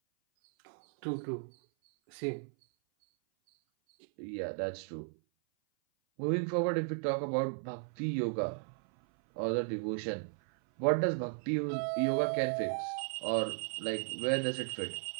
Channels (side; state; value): left; silent; 54 dB below the other